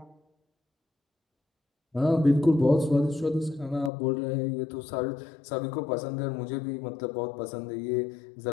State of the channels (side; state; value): right; drops out; at 3.9 s